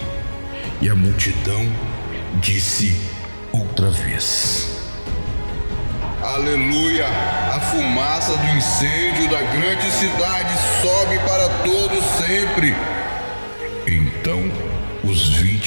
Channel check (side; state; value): both; inverted; correlation -1.00